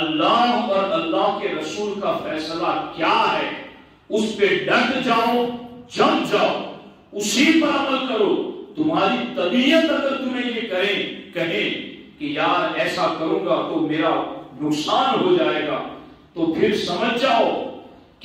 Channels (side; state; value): both; identical; correlation 1.00